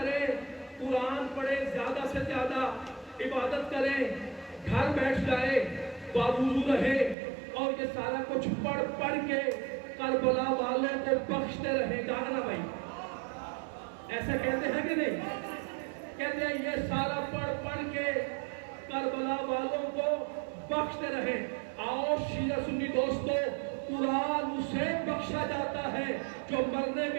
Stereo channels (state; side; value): drops out; left; at 7.2 s